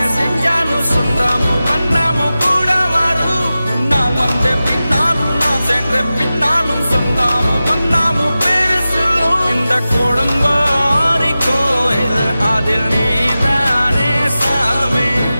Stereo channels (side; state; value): both; inverted; correlation -0.94